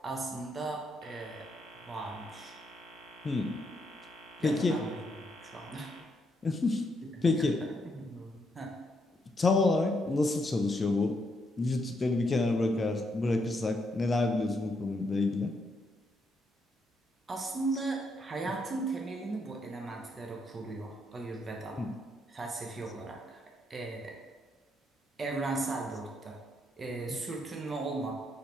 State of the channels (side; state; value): both; normal; correlation 0.77